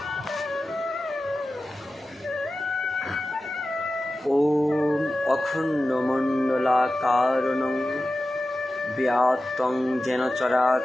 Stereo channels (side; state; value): both; normal; correlation 0.94